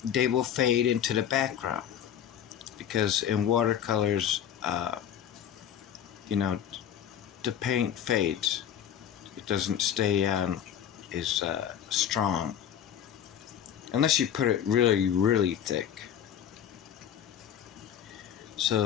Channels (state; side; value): quieter; right; 9.6 dB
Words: they will fade into the background. Because in watercolors, you know, the paint fades. It doesn't stay on as strong unless you put it really, really thick.